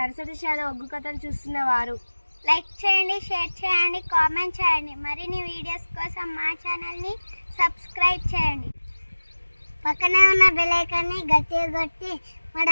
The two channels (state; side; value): inverted; both; correlation -1.00